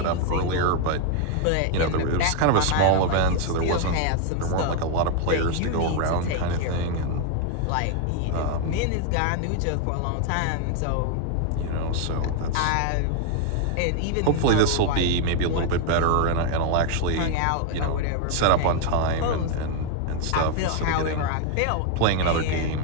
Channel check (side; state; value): both; different; correlation 0.00